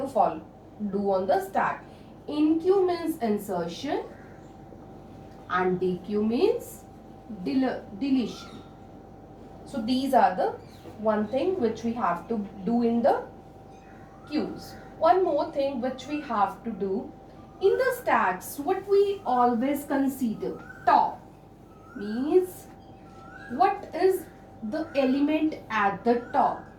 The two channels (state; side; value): identical; both; correlation 1.00